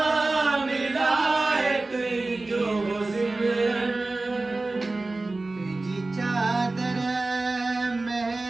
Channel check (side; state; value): left; quieter; 3.2 dB